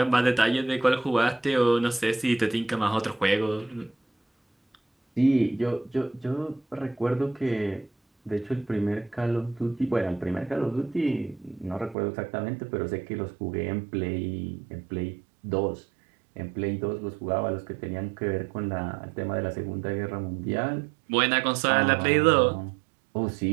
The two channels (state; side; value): drops out; left; at 12.0 s